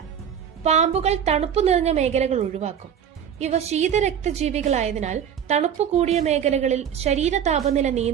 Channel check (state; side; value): quieter; left; 8.7 dB